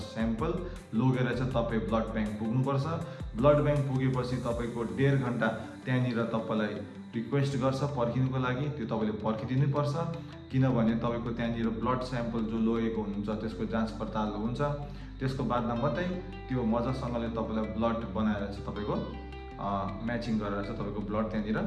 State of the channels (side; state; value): both; identical; correlation 1.00